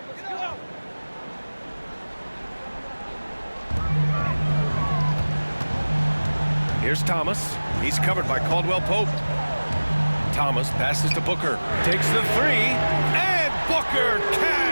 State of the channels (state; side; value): inverted; both; correlation -1.00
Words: Here's Thomas. He's covered by Caldwell Pope. Thomas passes to Booker. Takes the three. And Booker